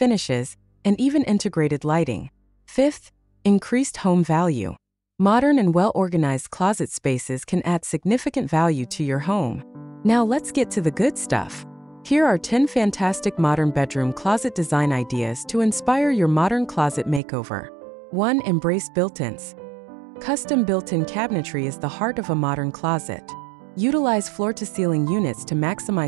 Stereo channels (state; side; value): drops out; left; at 17.2 s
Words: and even integrated lighting. Fifth, increased home value. Modern and well-organized closet spaces can add significant value to your home. Now let's get to the good stuff. Here are 10 fantastic modern bedroom closet design ideas to inspire your modern closet makeover. 1. Embrace built-ins. Custom built-in cabinetry is the heart of a modern closet. Utilize floor-to-ceiling units to